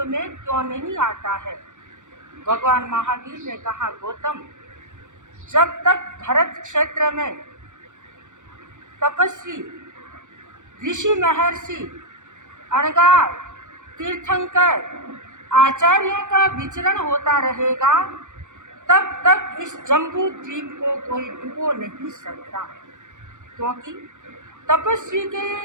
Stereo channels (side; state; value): left; late; 0.85 ms